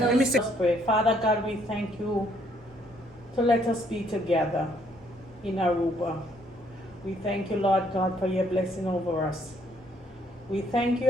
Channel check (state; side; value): normal; both; correlation 0.67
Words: Let me sit. Let's pray. Father God, we thank you to let us be together in Aruba. We thank you, Lord God, for your blessing over us. We thank you